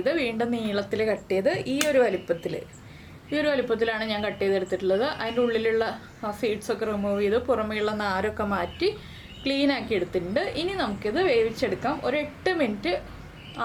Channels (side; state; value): both; identical; correlation 1.00